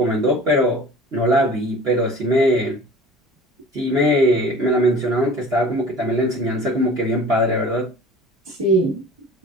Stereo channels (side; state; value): both; normal; correlation 0.43